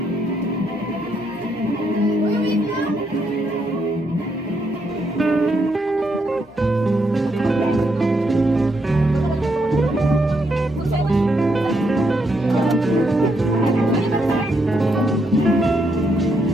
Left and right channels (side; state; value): both; normal; correlation 0.77